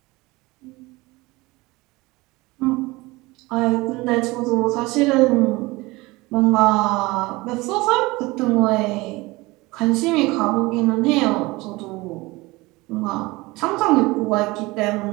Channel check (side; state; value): left; quieter; 21.9 dB